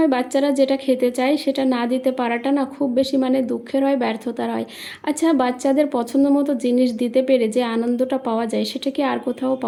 বাচ্চারা যেটা খেতে চায় সেটা না দিতে পারাটা না খুব বেশি দুঃখের হয়, ব্যর্থতার হয়। আচ্ছা, বাচ্চাদের পছন্দ মতো জিনিস দিতে পেরে যে আনন্দটা পাওয়া যায়, সেটা কি আর কোথাও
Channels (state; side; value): identical; both; correlation 1.00